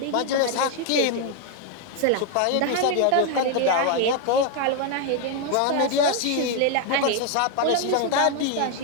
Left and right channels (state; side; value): different; both; correlation 0.01